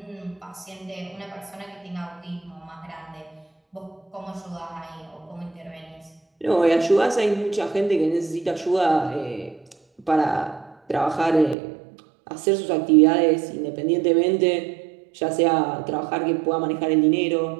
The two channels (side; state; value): left; drops out; at 11.6 s